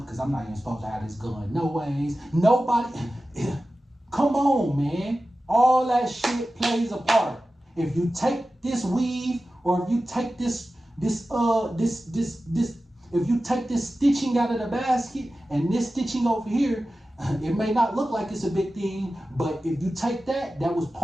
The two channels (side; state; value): both; normal; correlation 0.94